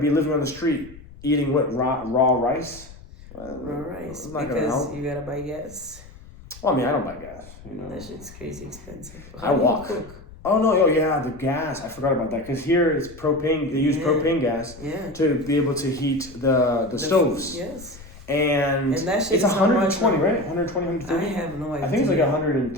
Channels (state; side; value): noise; left; rumble, 19 dB below the sound